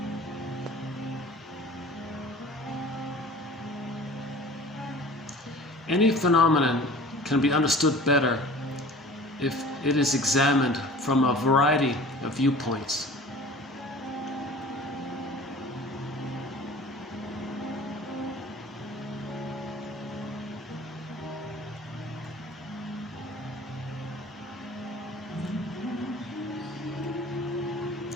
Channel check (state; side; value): normal; both; correlation 0.43